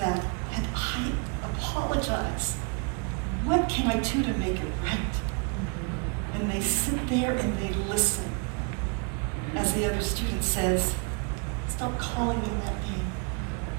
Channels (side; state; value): left; quieter; 36.5 dB